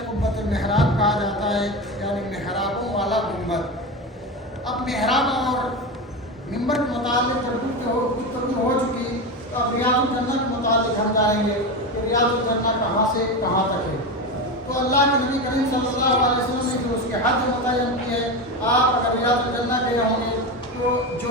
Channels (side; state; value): both; normal; correlation 0.20